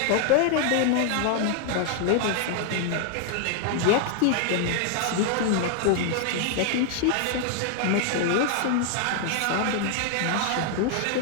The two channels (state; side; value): different; both; correlation 0.00